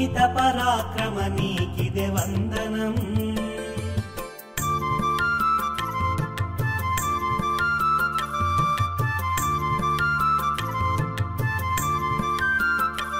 పరాక్రమ నీకిదే వందనం.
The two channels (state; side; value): identical; both; correlation 1.00